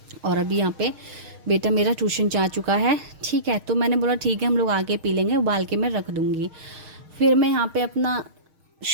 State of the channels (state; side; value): late; left; 6.5 ms